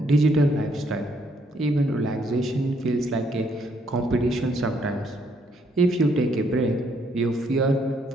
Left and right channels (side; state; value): both; normal; correlation 0.71